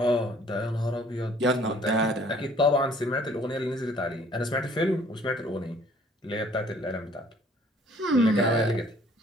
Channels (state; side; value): normal; both; correlation 0.57